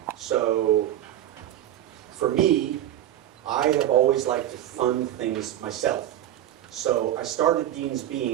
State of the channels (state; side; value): quieter; left; 12.2 dB